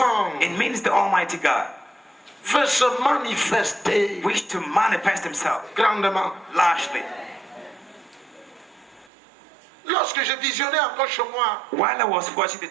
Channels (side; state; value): left; drops out; at 9.1 s